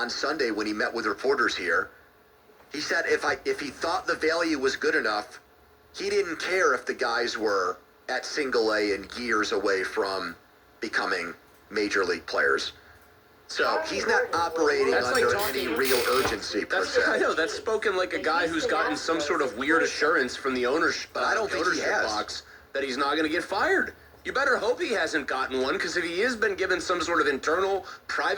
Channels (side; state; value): both; identical; correlation 1.00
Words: Sunday when he met with reporters here. He said if he thought the value was good enough, he didn't care if the guys were at single A and years away from becoming major league players. So he's not operating under any real urgency per se. I know, that's spoken like a guy who's gotten some sort of weird assurance from the ownership, but I don't think he has. Box that he's not going to get fired. You better hope he hasn't gotten one, because if he has been given some sort of internal,